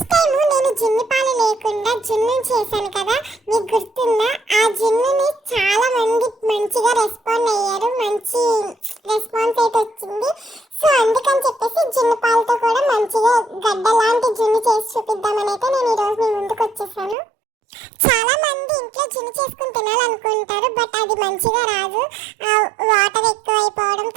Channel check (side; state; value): left; drops out; at 17.2 s